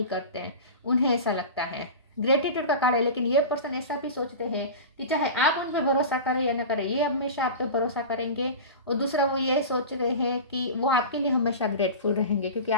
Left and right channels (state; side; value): inverted; both; correlation -0.30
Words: करते हैं, उन्हें ऐसा लगता है। ग्रेटिट्यूड का कार्ड है, लेकिन ये पर्सन ऐसा भी सोचते हैं कि चाहे आप उन पर भरोसा करें या ना करें, ये हमेशा आप पे भरोसा करेंगे। और दूसरा वो ये सोच रहे हैं कि वो आपके लिए हमेशा ग्रेटफुल रहेंगे क्योंकि